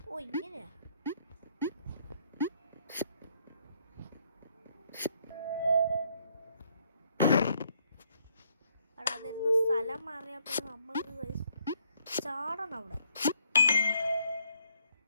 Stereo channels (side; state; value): both; inverted; correlation -0.70